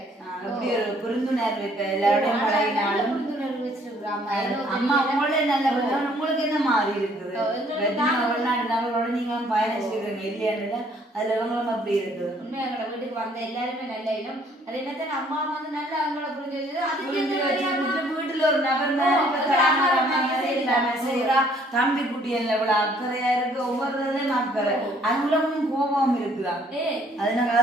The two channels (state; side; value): normal; both; correlation 0.62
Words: எப்படி ஒரு புரிந்துணர்வு இப்ப எல்லாரோடையும் பழகினாலும் அம்மா உங்களே நல்ல உங்களுக்கு என்ன மாறி இருக்குது? வெளிநாடு நபரோட நீங்க பயணிச்சிருக்கீங்க இல்லையா? அதுல இவங்களும் அப்படி இருக்குது. உண்மையா எங்களை வீட்டுக்கு வந்த எல்லாருமே நல்ல இடம். அது என்னத்தான் அம்மா வந்து நல்லா அவங்கள புரிஞ்சு வீட்டுல ஒரு நபர் செய்யறா. தம்பி குட்டி எவ்வளவு அக்கறையா இருக்கு, ஒவ்வொருத்தையும் அக்கறை. அங்குலமும் கோபம் இருக்குதான். அதனால